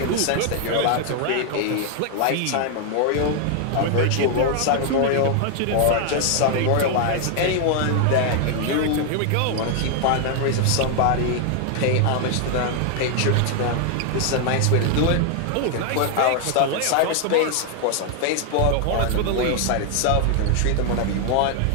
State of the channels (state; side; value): different; both; correlation 0.00